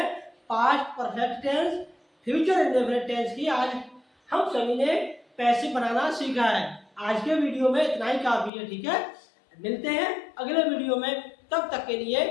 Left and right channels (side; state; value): right; drops out; at 8.5 s